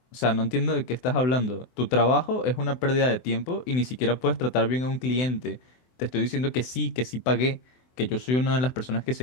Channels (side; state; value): right; late; 24 ms